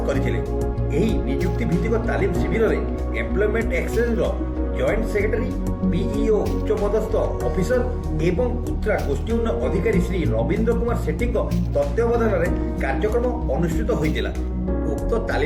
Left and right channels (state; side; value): identical; both; correlation 1.00